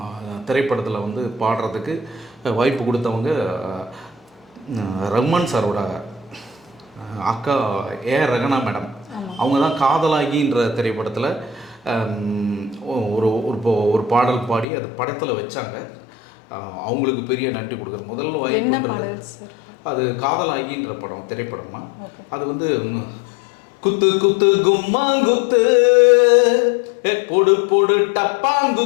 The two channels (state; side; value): drops out; right; at 14.7 s